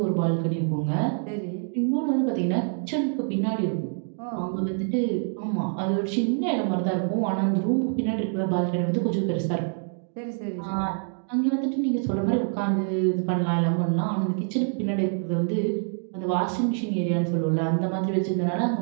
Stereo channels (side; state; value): left; silent; 56 dB below the other